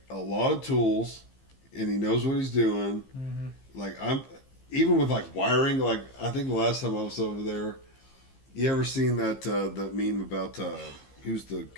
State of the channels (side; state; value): right; late; 15 ms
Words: a lot of tools, and he knows what he's doing. Mhm. Like I'm, even with like wiring. Like I think the last time I was over there, you ever seen that meme about who's the